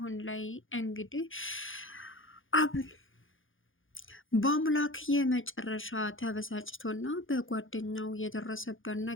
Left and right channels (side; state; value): right; late; 0.58 ms